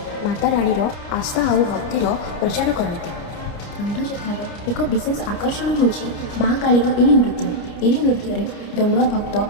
माता रानीर आस्था और भक्तिर प्रचार करते। दंडयात्रार एक विशेष आकर्षण होछि महाकालीर यही नृत्य। यही नृत्य दंडुआ भक्त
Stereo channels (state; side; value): late; right; 29 ms